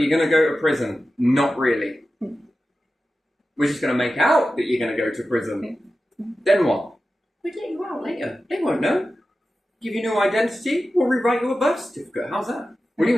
going to go to prison. Not really. We're just going to make out that you're going to go to prison. Then what? We'll let you out later. They won't know. Give you new identity. We'll rewrite your birth certificate. How's that? We'll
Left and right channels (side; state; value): both; normal; correlation 0.93